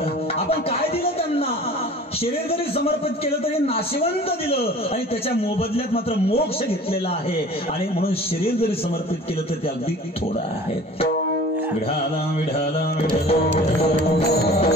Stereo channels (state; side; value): normal; both; correlation 0.44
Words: आपण काय दिलं त्यांना. शरीर जरी समर्पित केलं तरी नाशिवंत दिलं आणि त्याच्या मोबदल्यात मात्र मोक्ष घेतलेला आहे. आणि म्हणून शरीर जरी समर्पित केलं तर ते अगदी थोडं आहे. विढाला विढाला विढाला